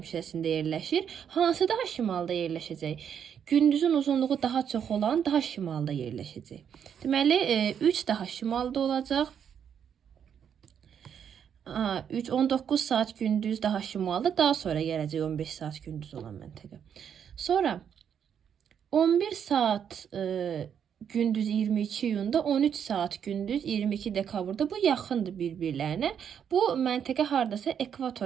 yerləşir. Hansı daha şimalda yerləşəcək? Gündüzün uzunluğu daha çox olan daha şimalda yerləşəcək. Deməli 3 daha şimalda olacaq. 19 saat gündüz daha şimalda, daha sonra gələcək 15 saat gündüz olan məntəqə. Sonra 11 saat gündüz 22 iyunda, 13 saat gündüz 22 dekabrda, bu yaxındır bir-birlərinə. Bu məntəqə hardasa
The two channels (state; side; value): quieter; left; 8.2 dB